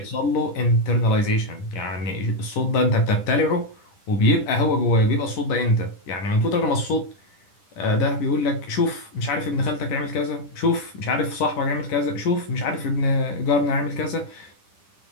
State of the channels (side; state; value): right; late; 10 ms